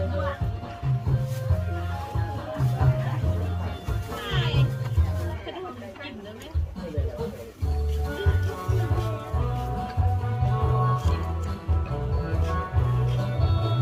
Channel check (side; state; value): both; identical; correlation 1.00